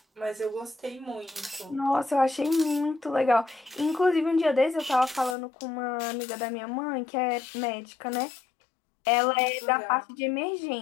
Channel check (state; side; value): drops out; right; at 5.4 s